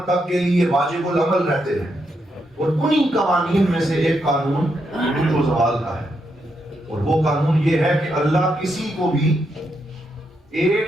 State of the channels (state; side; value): normal; both; correlation 0.81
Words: تک کے لیے واجب العمل رہتے ہیں، اور انہی قوانین میں سے ایک قانون عروج و زوال کا ہے، اور وہ قانون یہ ہے کہ اللہ کسی کو بھی